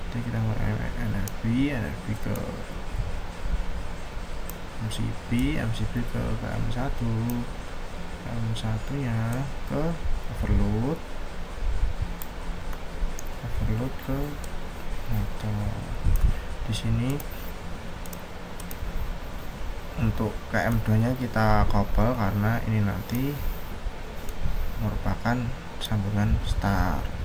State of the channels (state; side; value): identical; both; correlation 1.00